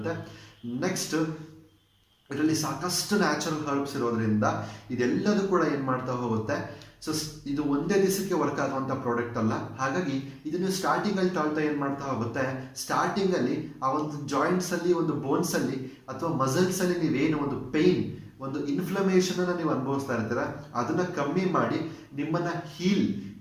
ನೆಕ್ಸ್ಟ್ ಇದರಲ್ಲಿ ಸಾಕಷ್ಟು ನ್ಯಾಚುರಲ್ ಹರ್ಬ್ಸ್ ಇರೋದ್ರಿಂದ ಇದೆಲ್ಲದೂ ಕೂಡ ಏನ್ ಮಾಡ್ತಾ ಹೋಗುತ್ತೆ. ಸೊ ಇದು ಒಂದೇ ದಿವಸಕ್ಕೆ ವರ್ಕ್ ಆಗುವಂತ ಪ್ರಾಡಕ್ಟ್ ಅಲ್ಲ. ಹಾಗಾಗಿ ಇದನ್ನು ಸ್ಟಾರ್ಟಿಂಗ್ ಅಲ್ಲಿ ತಾಳ್ತಾ ಏನ್ ಮಾಡ್ತಾ ಹೋಗುತ್ತೆ, ಸ್ಟಾರ್ಟಿಂಗ್ ಅಲ್ಲಿ ಆ ಒಂದು ಜಾಯಿಂಟ್ಸ್ ಅಲ್ಲಿ, ಒಂದು ಬೋನ್ಸ್ ಅಲ್ಲಿ ಅಥವಾ ಮಸಲ್ಸ್ ಅಲ್ಲಿ ನೀವೇನು ಒಂದು ಪೇನ್, ಒಂದು ಇನ್ಫ್ಲಮೇಷನ್ ಅನ್ನ ನೀವು ಅನುಭವಿಸ್ತಾ ಇರ್ತೀರ ಅದನ್ನ ಕಮ್ಮಿ ಮಾಡಿ ನಿಮ್ಮನ್ನ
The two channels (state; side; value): identical; both; correlation 1.00